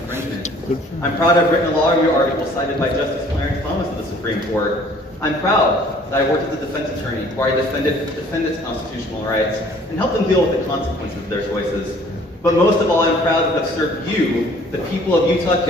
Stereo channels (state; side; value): normal; both; correlation 0.55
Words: I'm proud I've written a law review article cited by Justice Clarence Thomas of the Supreme Court. I'm proud that I worked as a defense attorney where I defended defendants' constitutional rights and helped them deal with the consequences of their choices. But most of all, I'm proud to have served you, the people of Utah